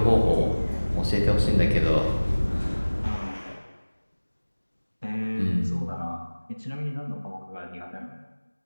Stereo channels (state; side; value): inverted; both; correlation -1.00